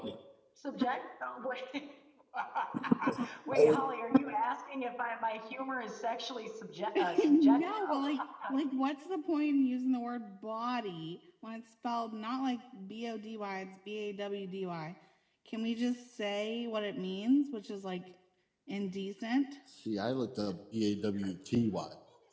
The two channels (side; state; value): both; identical; correlation 1.00